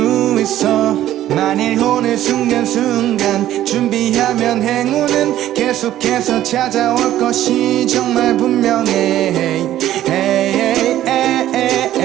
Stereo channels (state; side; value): quieter; left; 13.0 dB